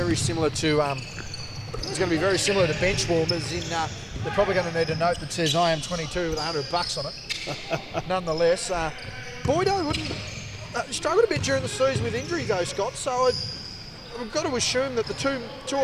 similar to bench warmers. They're probably going to need a note that says I am 22 with $100 on it. Nonetheless, Boydo wouldn't struggled a bit during the season with injury though, Scott. So we've got to assume that the two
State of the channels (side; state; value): both; identical; correlation 1.00